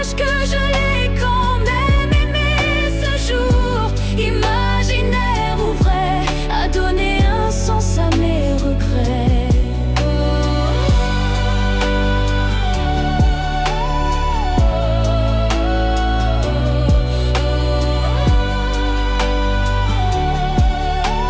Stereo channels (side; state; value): both; identical; correlation 1.00